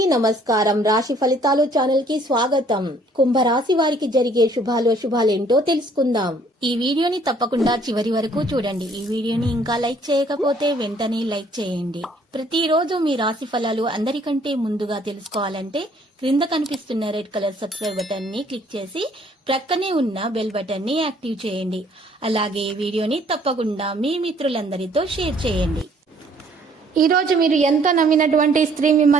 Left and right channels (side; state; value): both; normal; correlation 0.61